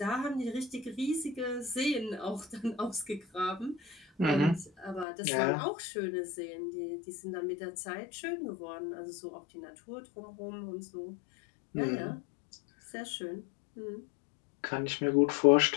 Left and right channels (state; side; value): drops out; right; at 5.1 s